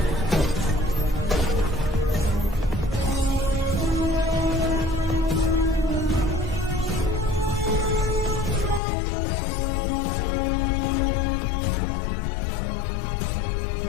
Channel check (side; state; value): right; drops out; at 8.8 s